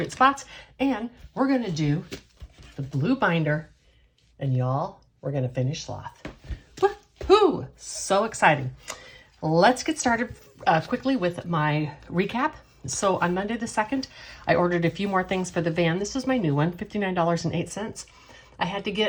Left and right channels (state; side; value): identical; both; correlation 1.00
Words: spots. And we're going to do the blue binder. And y'all, we're going to finish sloth. Woohoo! So exciting. Let's get started quickly with my recap. So on Monday the 2nd, I ordered a few more things for the van. This is my new one, $59.08. I had to